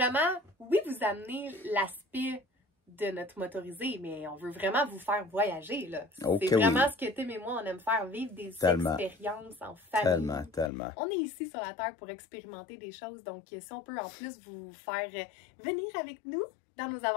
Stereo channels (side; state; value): right; drops out; at 10.7 s